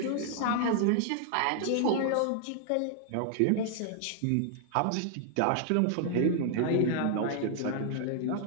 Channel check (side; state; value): both; different; correlation -0.01